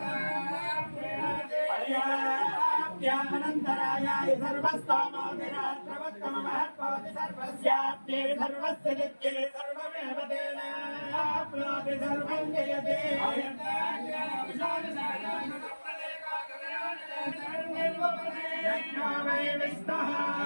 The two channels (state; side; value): inverted; both; correlation -1.00